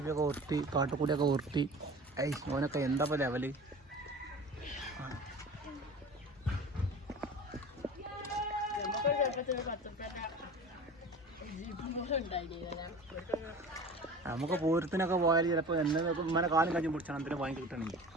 ഒക്കെ ഉരുട്ടി, കാട്ടുകൂടിയൊക്കെ ഉരുട്ടി. ഓനൊക്കെ എന്താ ലെവല്. നമുക്ക് പൂരത്തിനൊക്കെ പോയാൽ ചിലപ്പോൾ ഇങ്ങനെ കാലം കഴിഞ്ഞ് പിടിച്ചാൽ എന്തിനും വാങ്ങി കിട്ടണമെങ്കിൽ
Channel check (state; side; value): normal; both; correlation 0.37